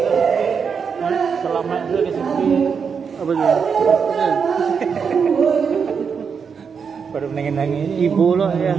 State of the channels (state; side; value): quieter; left; 6.2 dB